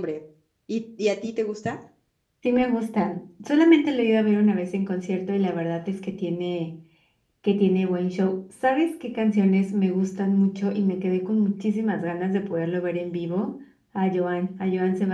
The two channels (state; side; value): identical; both; correlation 1.00